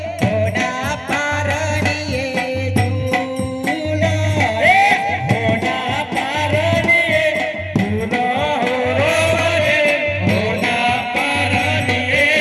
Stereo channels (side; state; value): both; identical; correlation 1.00